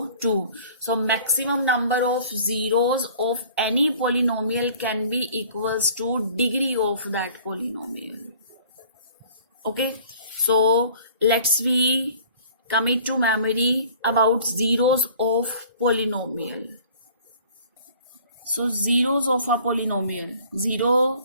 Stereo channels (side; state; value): both; inverted; correlation -0.50